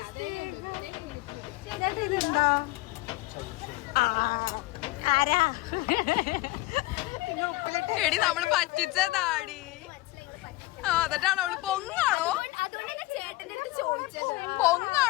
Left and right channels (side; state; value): right; quieter; 20.1 dB